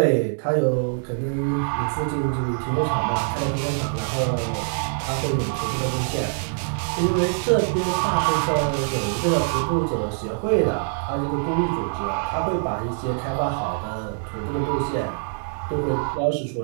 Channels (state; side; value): silent; left; digital silence